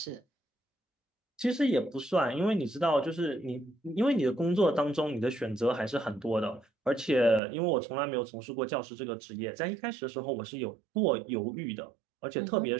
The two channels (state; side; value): drops out; left; at 7.4 s